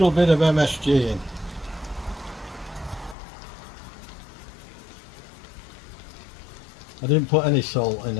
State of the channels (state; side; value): drops out; right; at 3.2 s